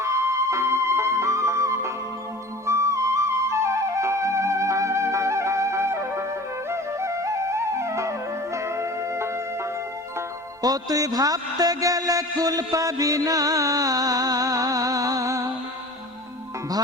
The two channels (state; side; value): normal; both; correlation 0.40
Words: তুই ভাবতে গেলে কুল পাবি না,